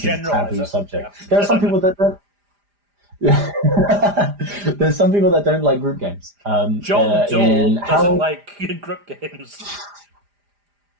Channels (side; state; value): left; late; 4.9 ms